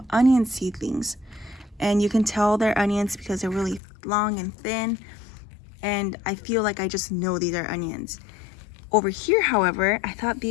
onion seedlings. And you can tell they're onions because they're really long and thin. And I feel like I just know these are onions. Over here, however, I thought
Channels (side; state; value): right; drops out; at 3.8 s